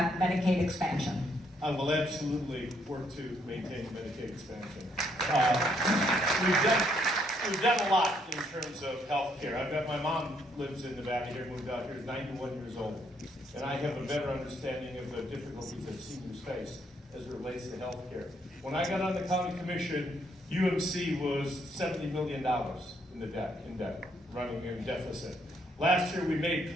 Medicaid expansion? I will absolutely work to maintain Medicaid expansion. We've done a lot in terms of health care. I've got my mom lives in Nevada here, moved out here, is 91 years old. And I have a better understanding of the difficulties that seniors face as it relates to health care. When I got on the county commission, UMC was $70 million in debt, running in deficit. Last year, we made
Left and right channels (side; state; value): both; normal; correlation 0.71